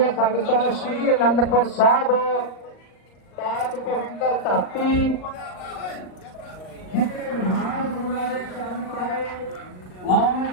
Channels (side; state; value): right; late; 38 ms